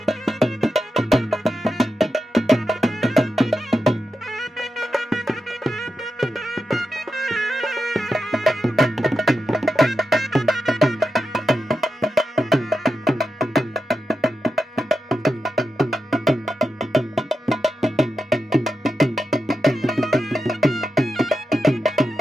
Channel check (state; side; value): normal; both; correlation 0.89